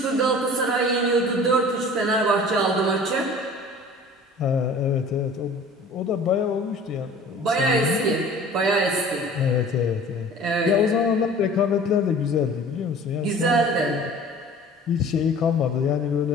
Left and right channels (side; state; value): both; normal; correlation 0.45